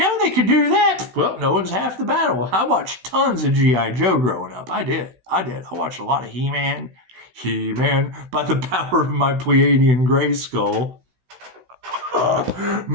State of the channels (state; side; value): late; left; 16 ms